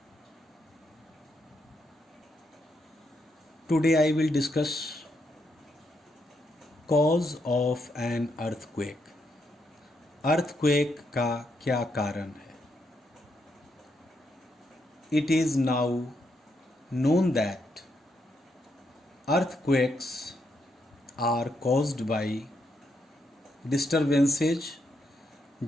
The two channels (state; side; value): normal; both; correlation 0.79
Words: Today I will discuss cause of an earthquake. Earthquake का क्या कारण है? It is now known that earthquakes are caused by disturbances